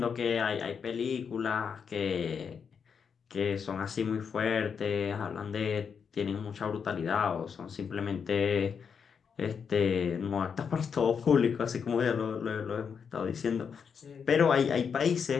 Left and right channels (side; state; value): right; quieter; 6.6 dB